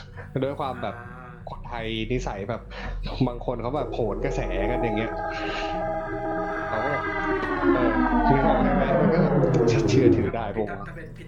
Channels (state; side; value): identical; both; correlation 1.00